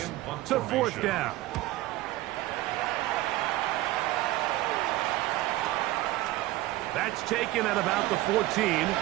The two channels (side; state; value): left; quieter; 17.2 dB